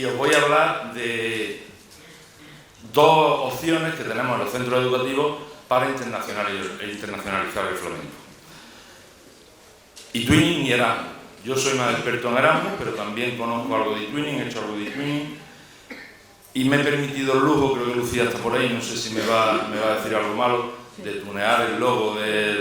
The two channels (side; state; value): both; identical; correlation 1.00